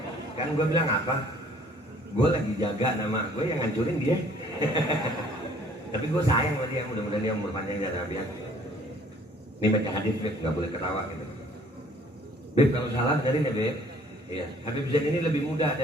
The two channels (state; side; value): normal; both; correlation 0.57